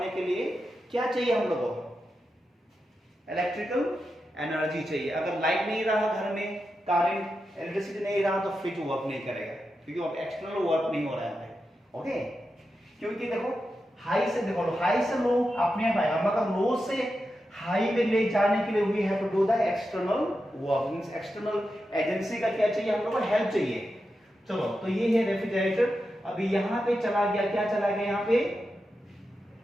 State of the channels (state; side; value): normal; both; correlation 0.89